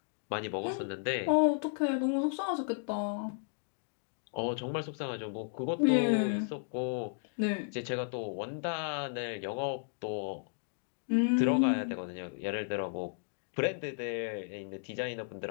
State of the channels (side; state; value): right; silent; digital silence